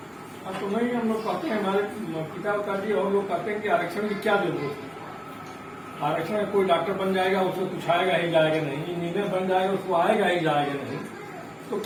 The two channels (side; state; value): both; identical; correlation 1.00